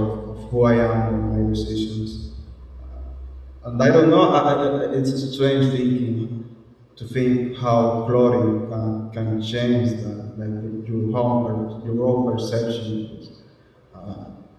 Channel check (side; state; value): both; identical; correlation 1.00